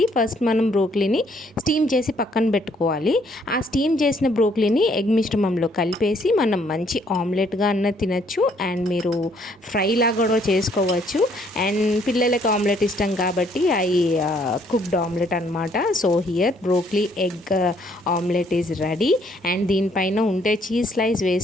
ఫస్ట్ మనం బ్రోకలీని స్టీమ్ చేసి పక్కన పెట్టుకోవాలి. ఆ స్టీమ్ చేసిన బ్రోకలీని ఎగ్ మిశ్రమంలో కలిపేసి మనం మంచి ఆమ్లెట్గా అన్న తినచ్చు, అండ్ మీరు ఫ్రై లాగా కూడా చేసుకోవచ్చు. అండ్ పిల్లలకి ఆమ్లెట్ ఇష్టం కాబట్టి అవి కుక్డ్ ఆమ్లెట్ అనమాట. So here broccoli egg omelette is ready. And దీనిపైన ఉంటే చీజ్ స్లైస్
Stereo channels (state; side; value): normal; both; correlation 0.66